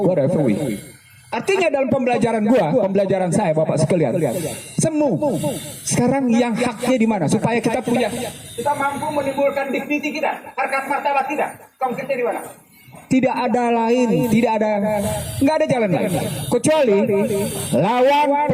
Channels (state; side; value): identical; both; correlation 1.00